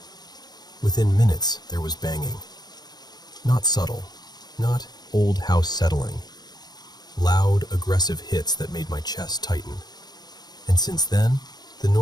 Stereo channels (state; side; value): late; right; 0.20 ms